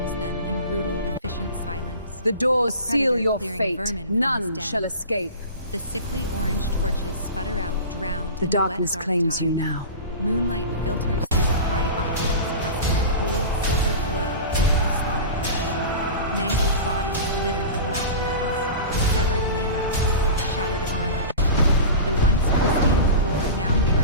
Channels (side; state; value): both; inverted; correlation -0.33